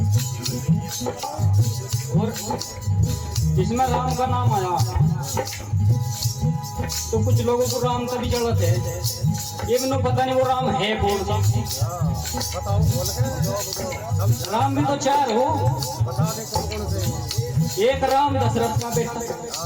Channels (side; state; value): both; identical; correlation 1.00